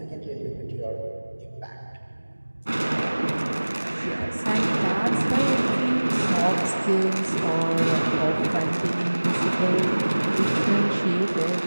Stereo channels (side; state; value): both; inverted; correlation -1.00